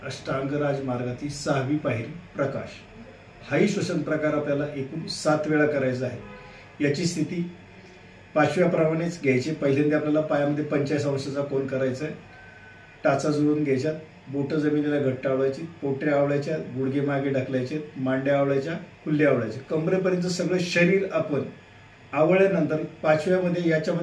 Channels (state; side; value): identical; both; correlation 1.00